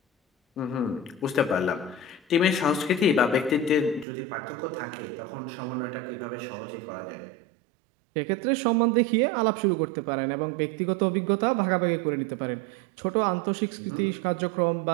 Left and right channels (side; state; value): left; drops out; at 4.0 s